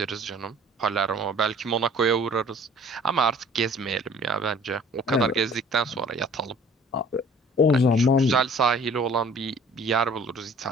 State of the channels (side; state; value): both; normal; correlation 0.52